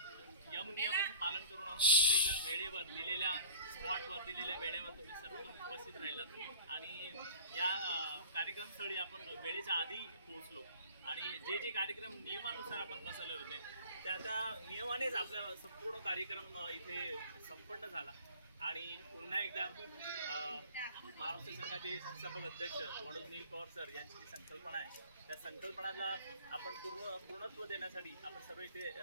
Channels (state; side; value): inverted; both; correlation -0.46